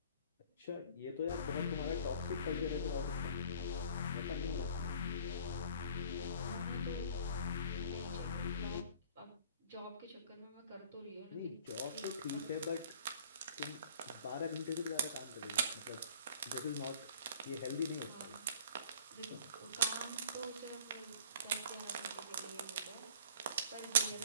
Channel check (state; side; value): inverted; both; correlation -0.50